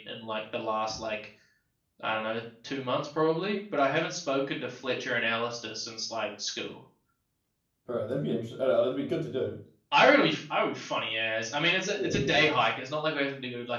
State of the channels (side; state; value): both; identical; correlation 1.00